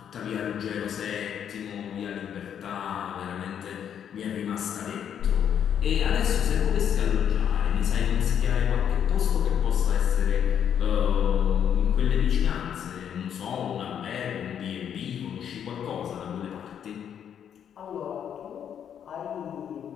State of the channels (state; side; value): quieter; right; 8.8 dB